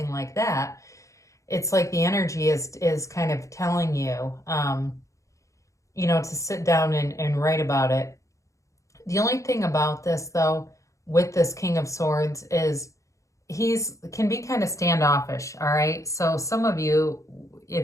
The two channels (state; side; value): late; right; 0.15 ms